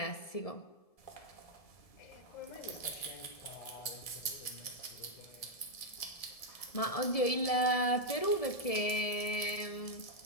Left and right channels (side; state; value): right; late; 1.7 ms